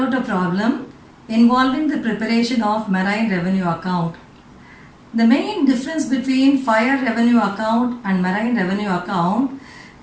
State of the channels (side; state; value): both; identical; correlation 1.00